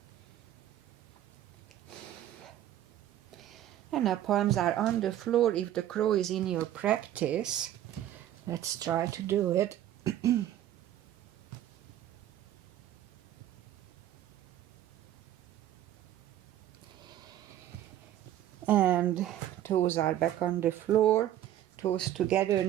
And now palms are on the floor. If the crow is in your practice, let's try to do it. And toes are back on the floor, toes together,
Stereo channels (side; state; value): left; quieter; 12.2 dB